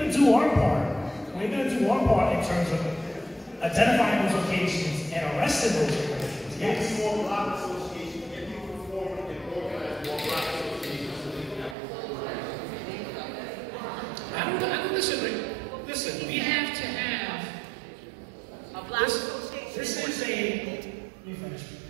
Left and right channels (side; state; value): left; drops out; at 11.8 s